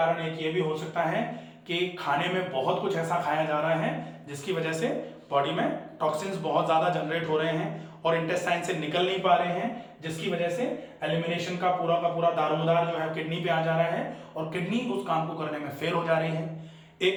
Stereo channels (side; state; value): both; identical; correlation 1.00